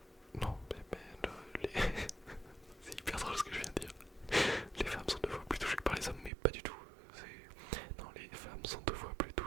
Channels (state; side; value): drops out; left; at 6.3 s